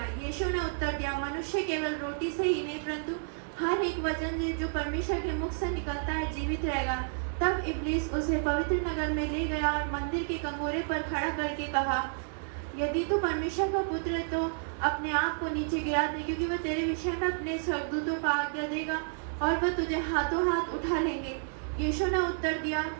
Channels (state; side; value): silent; left; digital silence